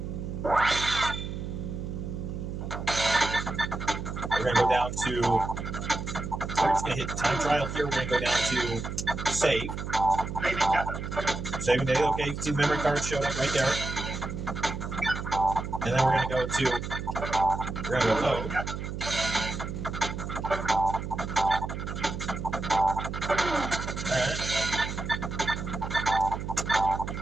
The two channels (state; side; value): noise; right; hum, 6 dB below the sound